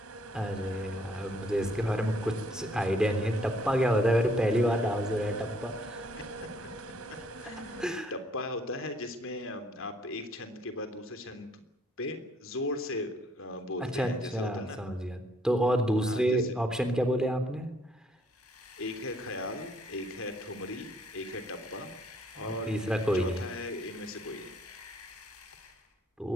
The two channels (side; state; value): both; normal; correlation 0.65